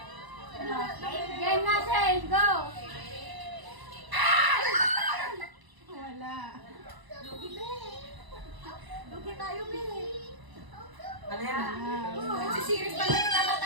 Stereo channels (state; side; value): late; left; 1.0 ms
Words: Game na, Shane. Go! Lugi tayo, Billy. Ano yan? Si Siris pa lang kita